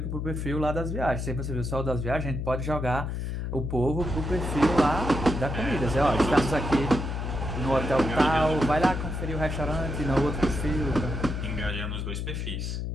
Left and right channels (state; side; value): noise; left; hum, 3 dB below the sound